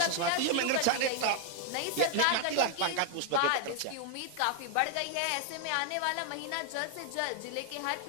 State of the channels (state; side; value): different; both; correlation 0.00